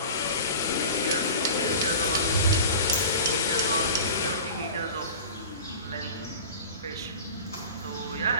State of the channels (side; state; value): both; inverted; correlation -0.36